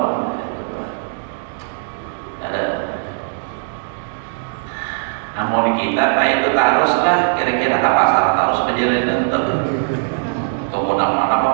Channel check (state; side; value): silent; left; digital silence